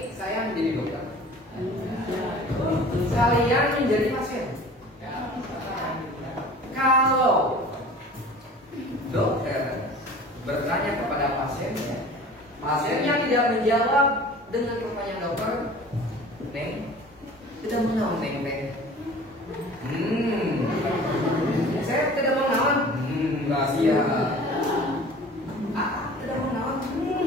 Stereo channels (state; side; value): normal; both; correlation 0.43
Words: saya menjadi dokter. Kalian menjadi pasien. Kalau dokter bertanya kepada pasiennya, pasiennya tidak menjawab dengan pertanyaan dokter, Neng, tidak mengenal Neng Neng. Saya tidak mengenal. Rahasia. Tidak mengenal.